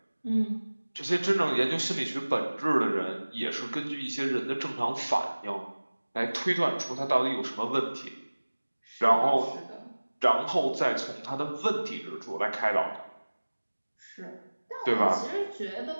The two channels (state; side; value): inverted; both; correlation -1.00